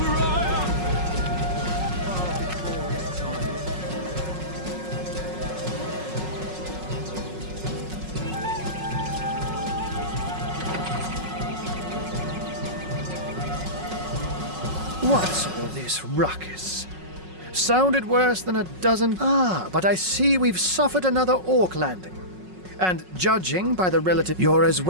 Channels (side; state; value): left; late; 5.4 ms